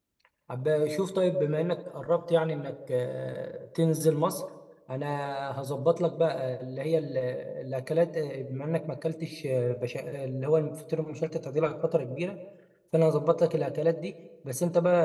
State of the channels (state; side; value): identical; both; correlation 1.00